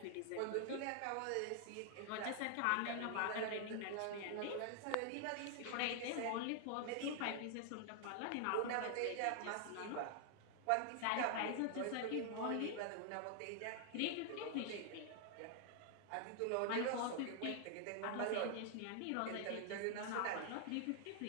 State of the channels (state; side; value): different; both; correlation 0.00